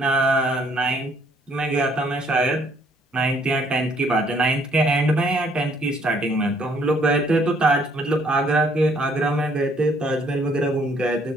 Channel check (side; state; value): both; normal; correlation 0.64